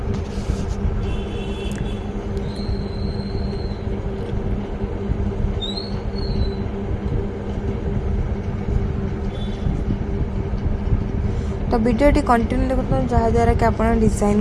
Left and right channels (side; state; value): both; identical; correlation 1.00